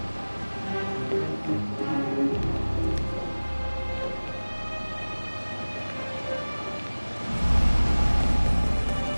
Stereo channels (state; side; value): inverted; both; correlation -1.00